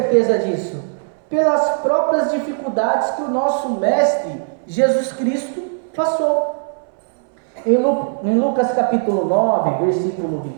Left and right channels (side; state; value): left; silent; 62 dB below the other